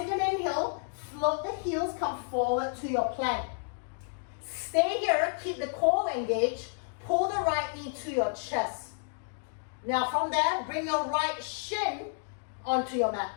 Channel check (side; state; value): right; silent; digital silence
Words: an inhale, float the heels, come forward to your plank. Stay here, keep the core engaged, pull the right knee to your chest. Now from there, bring your right shin onto your mat.